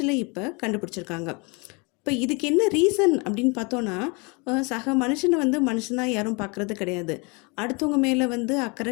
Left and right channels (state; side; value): quieter; right; 30.4 dB